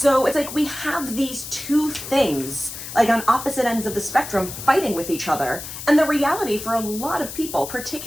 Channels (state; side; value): noise; left; hiss, 10 dB below the sound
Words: it's like we have these two things, like on opposite ends of the spectrum, fighting with each other. And the reality for a lot of people,